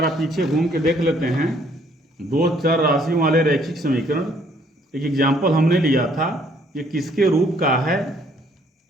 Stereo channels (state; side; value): normal; both; correlation 0.64